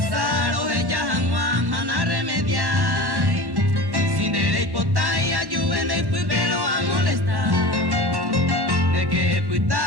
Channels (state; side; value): late; left; 1.1 ms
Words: o ella agua mana remediar. Sin de hipotaya de pelo a molestar. De que